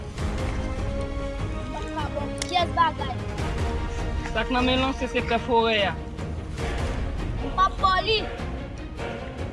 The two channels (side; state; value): both; identical; correlation 1.00